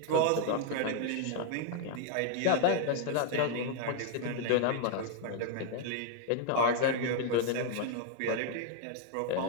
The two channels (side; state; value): both; different; correlation 0.00